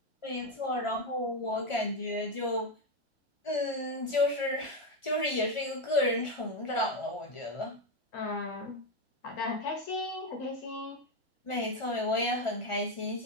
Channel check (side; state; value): right; late; 1.4 ms